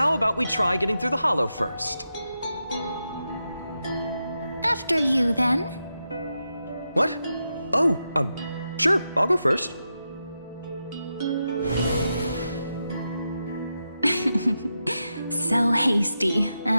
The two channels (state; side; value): inverted; both; correlation -0.88